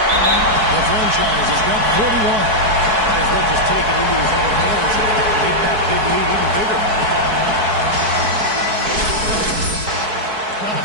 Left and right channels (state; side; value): late; left; 4.6 ms